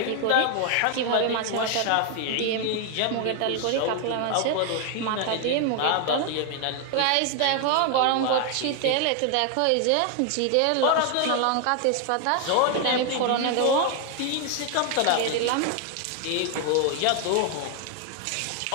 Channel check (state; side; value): different; both; correlation 0.00